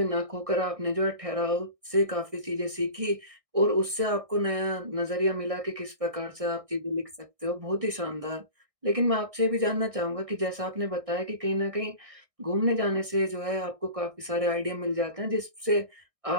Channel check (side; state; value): left; late; 1.6 ms